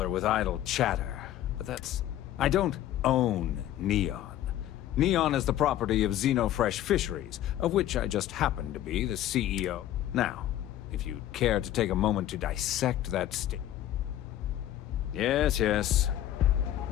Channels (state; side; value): quieter; right; 12.7 dB